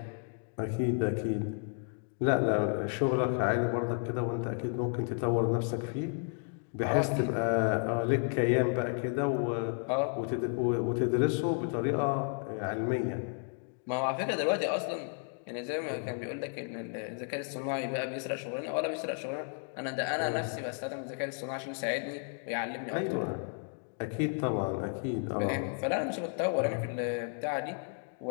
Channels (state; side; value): silent; right; 56 dB below the other